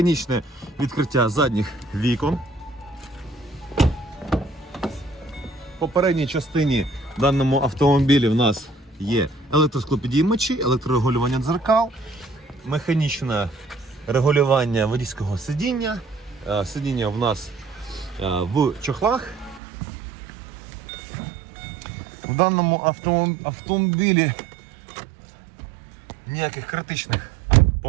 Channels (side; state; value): left; drops out; at 19.6 s